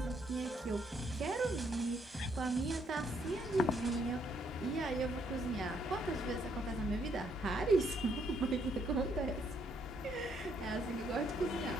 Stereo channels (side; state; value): both; normal; correlation 0.71